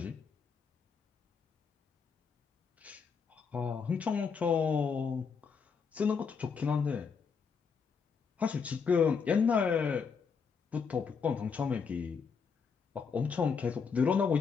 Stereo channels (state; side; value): quieter; right; 5.8 dB